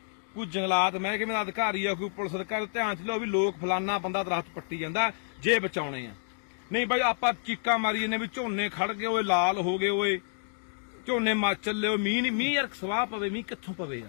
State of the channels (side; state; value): right; silent; digital silence